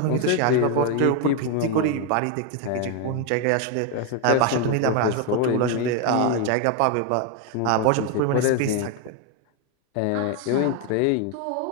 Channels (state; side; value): different; both; correlation 0.01